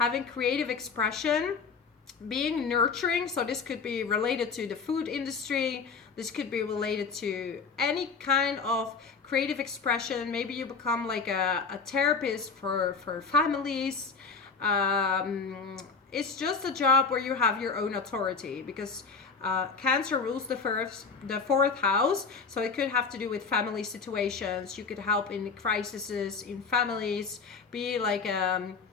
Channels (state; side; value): quieter; right; 5.1 dB